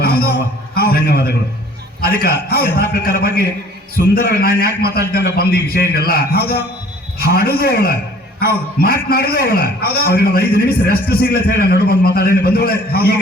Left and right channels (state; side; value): normal; both; correlation 0.53